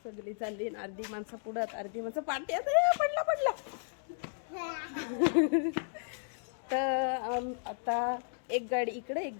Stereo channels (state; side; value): silent; right; digital silence